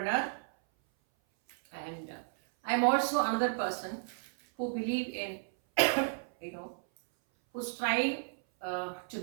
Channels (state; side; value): silent; left; 56 dB below the other